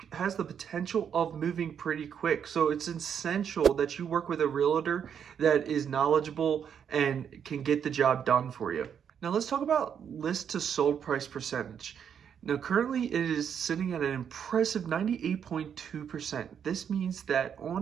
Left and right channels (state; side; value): quieter; left; 8.0 dB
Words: has the potential of moving pretty quick. So it's essential that you work with a realtor that is knowledgeable and can get the job done for you. Now let's talk about list to sold price percentage. Now, currently it is sitting at an impressive 98.2%. This means that